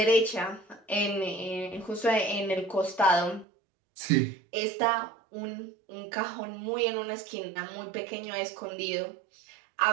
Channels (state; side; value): drops out; left; at 3.5 s